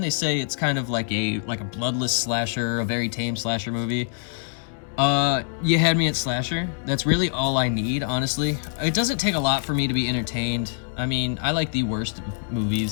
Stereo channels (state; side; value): silent; right; digital silence